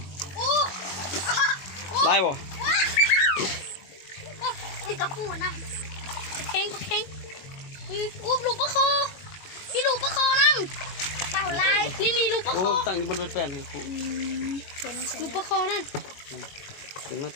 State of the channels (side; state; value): right; late; 21 ms